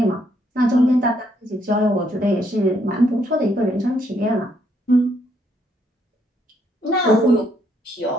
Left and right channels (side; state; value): both; normal; correlation 0.72